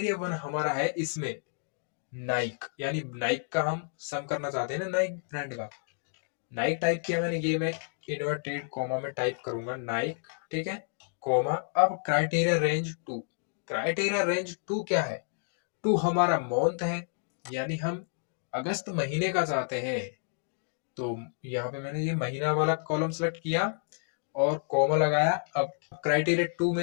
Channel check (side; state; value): right; silent; digital silence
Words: 1 हमारा है इसमें नाइक, यानी नाइक का हम सम करना चाहते हैं ना, नाइक ब्रांड का। नाइक टाइप किया मैंने, ये मैं इन्वर्टेड कॉमा में टाइप करूंगा नाइक। ठीक है, कॉमा। अब क्राइटेरिया रेंज 2, क्राइटेरिया रेंज 2 क्या है, 2 हमारा मंथ है, यानी हम अगस्त महीने का चाहते हैं। तो यहाँ पे मैंने ये महीना वाला कॉलम सेलेक्ट किया और कॉमा लगाया। अब क्राइटेरिया 2